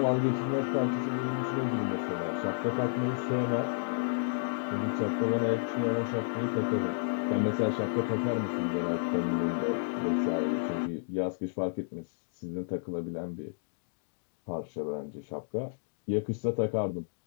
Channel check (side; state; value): right; silent; digital silence